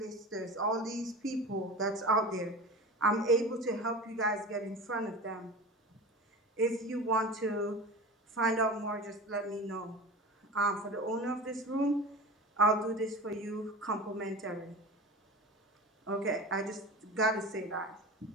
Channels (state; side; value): normal; both; correlation 0.32